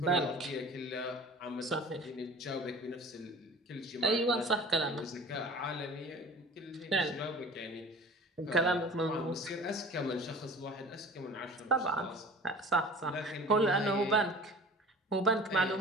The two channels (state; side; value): normal; both; correlation 0.42